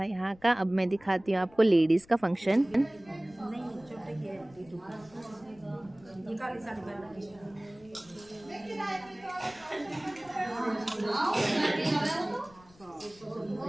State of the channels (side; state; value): left; noise; rumble, 26 dB below the sound